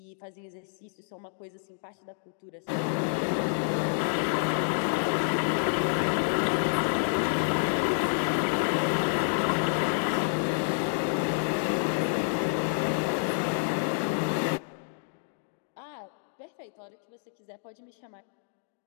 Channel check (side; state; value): right; silent; digital silence